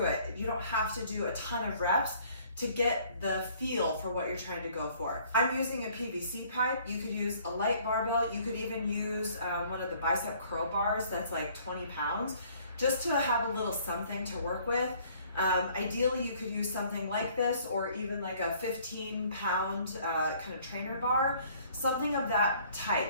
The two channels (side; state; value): both; inverted; correlation -0.58